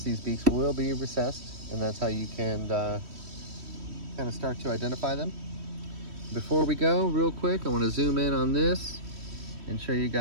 these beaks will be recessed, and that's how you can kind of start to identify them. Before we go, real quick, I want to zoom in on this and show you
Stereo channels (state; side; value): late; left; 3.1 ms